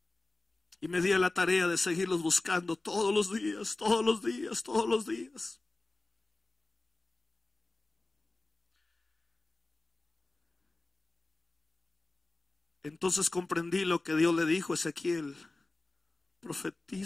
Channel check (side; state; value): right; quieter; 3.1 dB